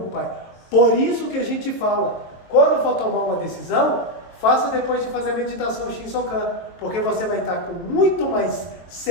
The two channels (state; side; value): late; right; 23 ms